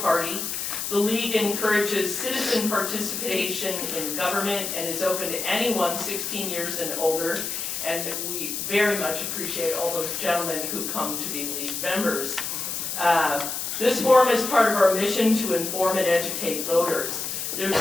The League encourages citizen participation in government and is open to anyone 16 years and older. And we very much appreciate all those gentlemen who come to be League members. This forum is part of our mission to inform and educate voters. There's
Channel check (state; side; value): noise; left; hiss, 3 dB below the sound